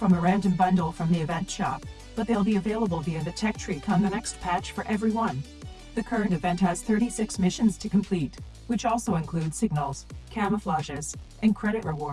a random bundle from the event shop, but they'll be available via the tech tree come the next patch for everyone. The current event has 36 missions to complete, which also include signals, camouflages, and credit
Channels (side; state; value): both; identical; correlation 1.00